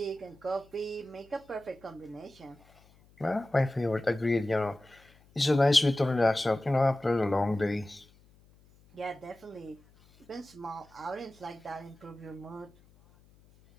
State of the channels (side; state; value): left; noise; hum, 28 dB below the sound